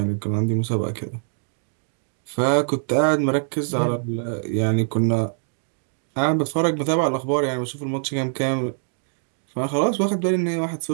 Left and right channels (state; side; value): silent; left; digital silence